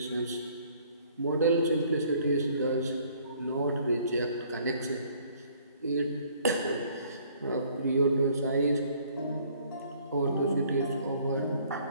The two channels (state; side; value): inverted; both; correlation -0.60